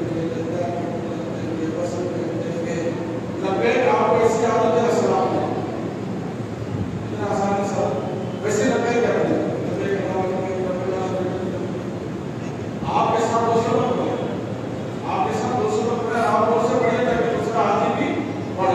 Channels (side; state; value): both; identical; correlation 1.00